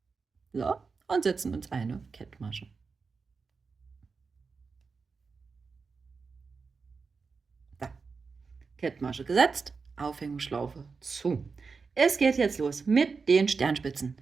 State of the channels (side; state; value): left; quieter; 4.8 dB